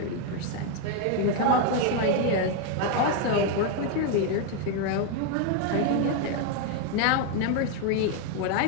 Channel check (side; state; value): both; different; correlation 0.01